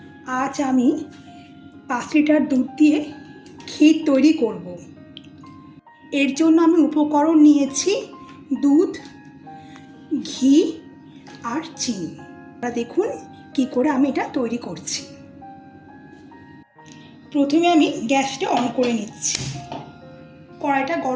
আজ আমি 5 লিটার দুধ দিয়ে ক্ষীর তৈরি করব। এর জন্য আমি উপকরণ নিয়েছি দুধ, ঘি আর চিনি। আপনারা দেখুন কি করে আমি এটা তৈরি করছি। প্রথমে আমি গ্যাসটা অন করে নিচ্ছি। কড়াইটা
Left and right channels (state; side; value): identical; both; correlation 1.00